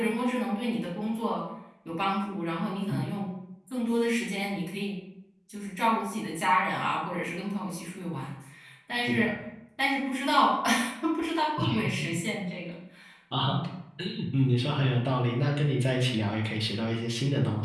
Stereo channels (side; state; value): both; identical; correlation 1.00